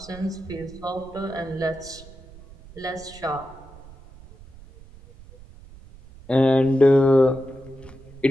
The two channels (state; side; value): noise; right; rumble, 20 dB below the sound